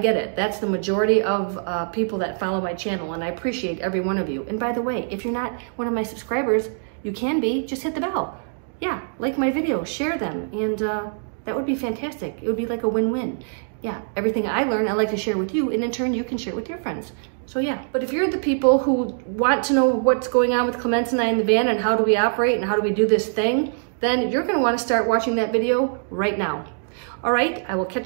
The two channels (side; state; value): left; silent; digital silence